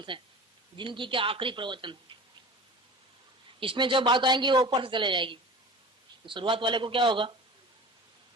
है, जिंदगी के आखिरी प्रवचन है। इसमें जो बात आएंगी वो ऊपर से चले जाएगी, तो शुरुआत वाले को क्या होगा,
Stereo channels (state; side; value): normal; both; correlation 0.37